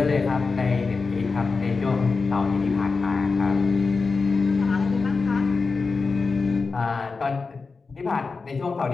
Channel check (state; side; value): quieter; right; 4.4 dB